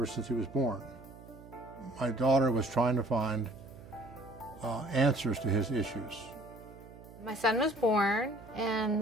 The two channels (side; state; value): right; noise; hum, 18 dB below the sound